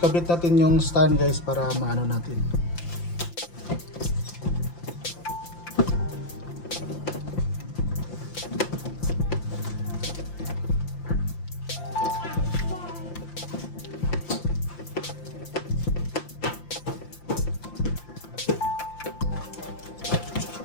natin yung stand guys para maano natin.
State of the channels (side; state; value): right; late; 5.8 ms